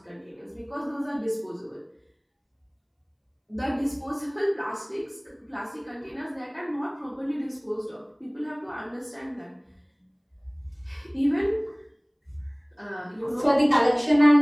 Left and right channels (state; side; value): identical; both; correlation 1.00